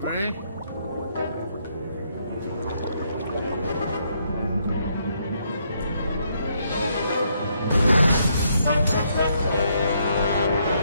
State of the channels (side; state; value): both; inverted; correlation -0.73